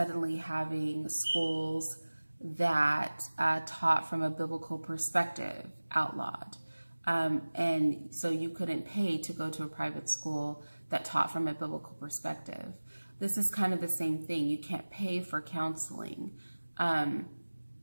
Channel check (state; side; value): inverted; both; correlation -1.00